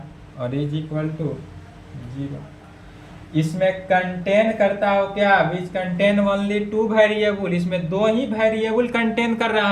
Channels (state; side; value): identical; both; correlation 1.00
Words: और इज इक्वल टू 0। इसमें कंटेन करता हो क्या, which contain only two variable, इसमें दो ही वेरिएबल कंटेन कर रहा